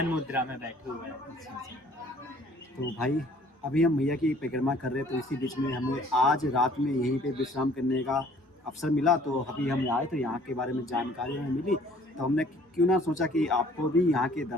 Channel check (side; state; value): both; normal; correlation 0.56